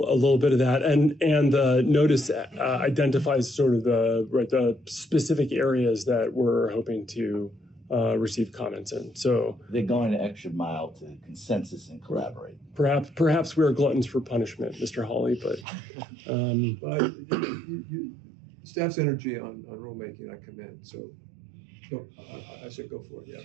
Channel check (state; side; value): drops out; left; at 15.7 s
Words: bit of that, and the notice identifies sort of the specific areas that we're hoping to receive comments in. So They're going the extra mile to consensus and collaborate. Perhaps we are gluttons for punishment, Mr. Hawley, but Staff's energy on rulemaking, I commend. So I said go for it.